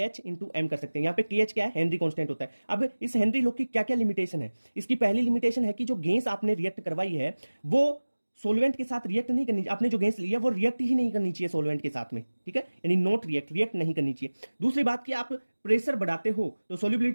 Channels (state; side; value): inverted; both; correlation -1.00